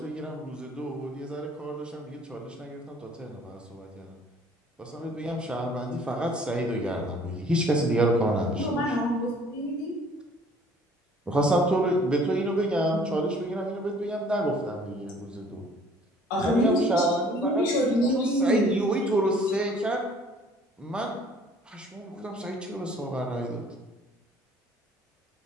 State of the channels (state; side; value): normal; both; correlation 0.55